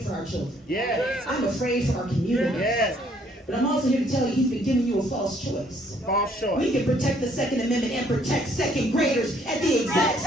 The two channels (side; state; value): both; normal; correlation 0.64